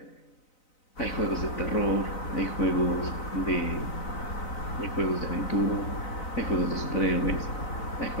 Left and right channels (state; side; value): late; right; 4.0 ms